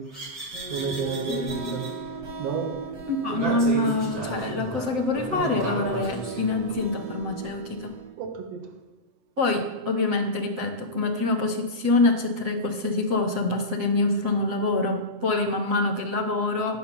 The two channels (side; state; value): left; late; 7.7 ms